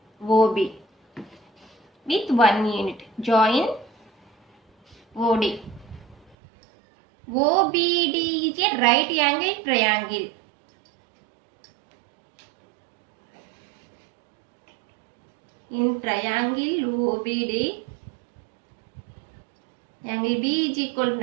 OB with 1 unit. Join OD. OBD is a right angle triangle. In triangle OBD, angle B is equal to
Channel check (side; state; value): left; drops out; at 6.4 s